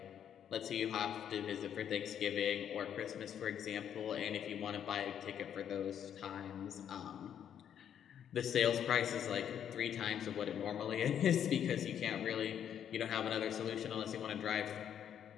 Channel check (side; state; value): right; quieter; 9.2 dB